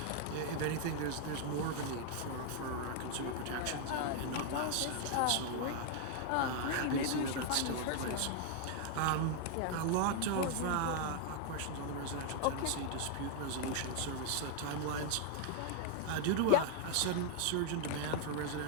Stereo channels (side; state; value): both; different; correlation 0.00